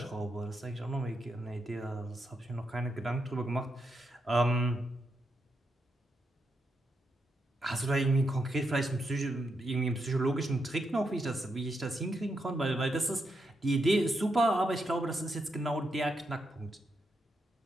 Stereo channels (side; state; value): both; normal; correlation 0.83